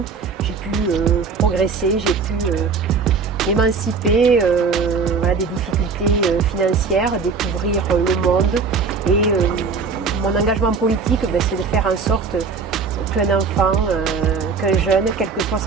j'ai pu progresser, j'ai pu m'émanciper des difficultés financières, découvrir le monde. Et mon engagement politique, c'est de faire en sorte qu'un enfant, qu'un jeune, quelle que soit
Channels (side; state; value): left; quieter; 5.0 dB